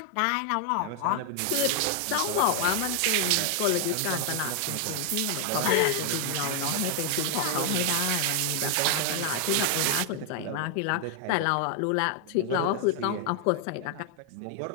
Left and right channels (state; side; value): different; both; correlation 0.00